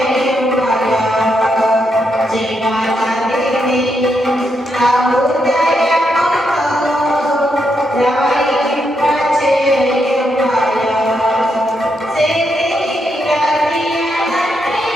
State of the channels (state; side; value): normal; both; correlation 0.81